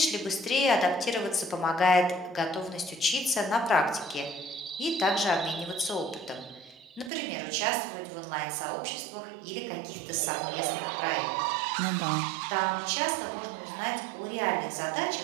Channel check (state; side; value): drops out; left; at 7.1 s